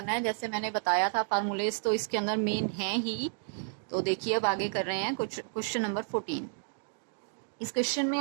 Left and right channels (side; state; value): left; silent; digital silence